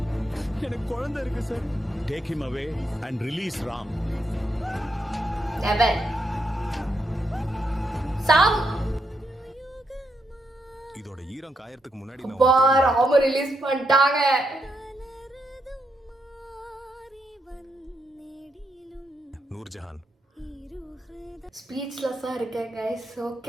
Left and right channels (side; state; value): both; normal; correlation 0.81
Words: எனக்கு குழந்தை இருக்கு sir. Take him away and release Ram. Never. Sam. இதோட ஈரம் காயறதுக்கு முன்னாடி அப்பா, ராம ரிலீஸ் பண்ணிட்டாங்க. நூர்ஜஹான் ஸ்பீச்லெஸ்ஸா இருக்கேன் guys.